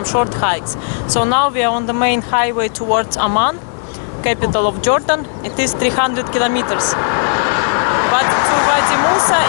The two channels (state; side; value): silent; right; 68 dB below the other